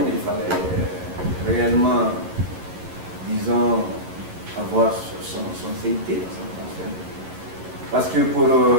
il fallait réellement, disons, avoir son CIT, son transfert. Parce que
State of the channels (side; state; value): left; late; 11 ms